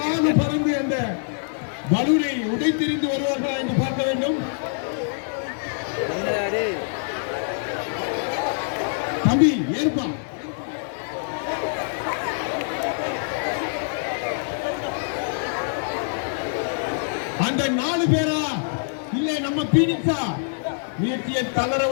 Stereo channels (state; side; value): silent; right; digital silence